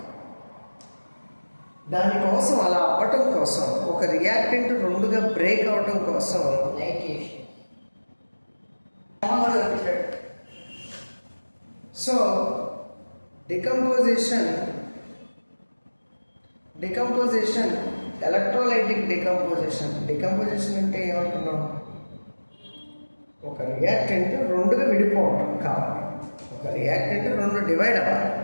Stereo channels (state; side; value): inverted; both; correlation -1.00